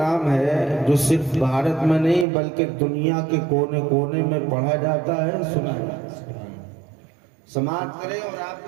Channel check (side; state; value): left; drops out; at 2.2 s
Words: ہے جو صرف بھارت میں نہیں بلکہ دنیا کے کونے کونے میں پڑھا جاتا ہے، سنا جاتا ہے۔ سماعت کریں اور آپ